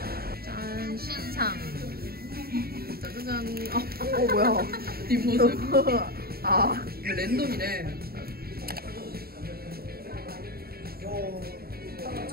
짠, 신상. 짜자잔. 뭐야. 뒷모습. 아, 랜덤이네.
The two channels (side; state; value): left; late; 0.45 ms